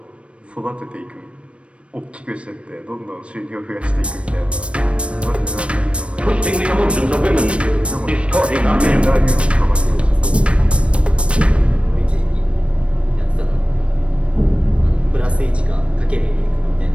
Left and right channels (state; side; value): late; left; 0.061 ms